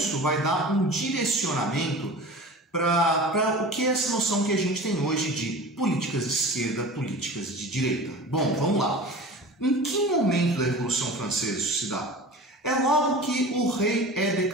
vai dar um direcionamento para o que é essa noção que a gente tem hoje de políticas de esquerda, políticas de direita. Bom, vamos lá. Em que momento da Revolução Francesa isso se dá? É logo que o rei é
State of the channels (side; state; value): both; normal; correlation 0.37